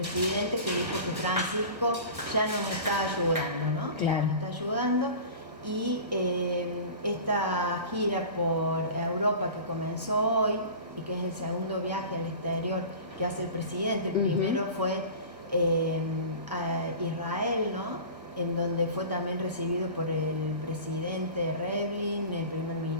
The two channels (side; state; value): left; late; 1.5 ms